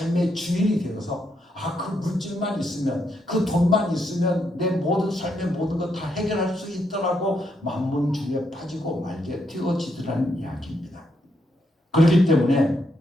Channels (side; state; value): both; normal; correlation 0.78